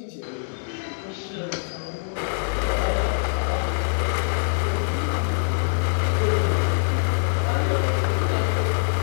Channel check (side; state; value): right; silent; digital silence